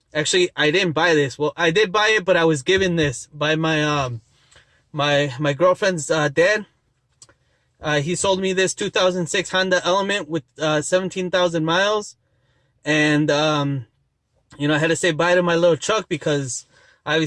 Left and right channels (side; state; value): both; identical; correlation 1.00